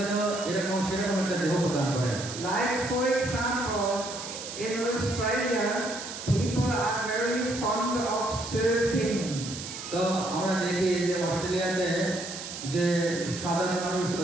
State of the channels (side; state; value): right; noise; hiss, 9 dB below the sound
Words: জন্য এরকম সেরকম একটা দেহ প্রদান করেন। Like for example, in Australia, people are very fond of surfing. তো আমরা দেখি যে অস্ট্রেলিয়াতে যে সাধারণ মানুষ